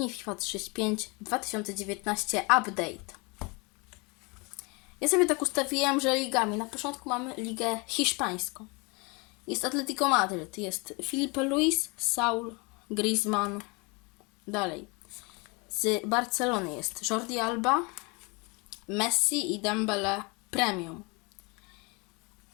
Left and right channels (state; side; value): quieter; right; 28.8 dB